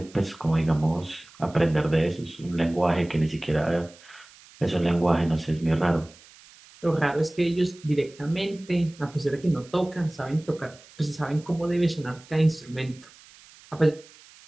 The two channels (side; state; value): right; noise; hiss, 24 dB below the sound